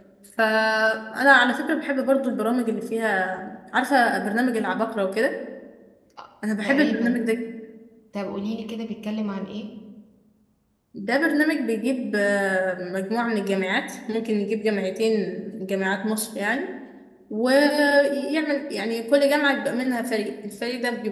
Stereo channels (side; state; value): both; identical; correlation 1.00